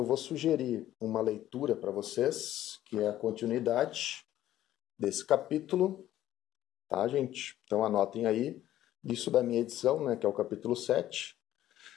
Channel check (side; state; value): right; quieter; 13.1 dB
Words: vou sugerir uma leitura para vocês, que é a continuidade desse capítulo, tá, gente? Então anotem aí, isso da minha edição, né, que é o capítulo 7,